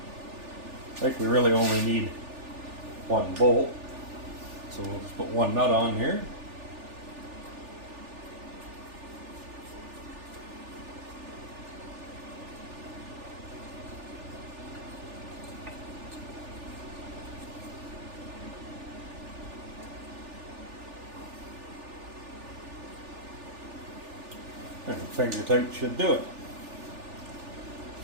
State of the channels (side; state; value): left; late; 3.4 ms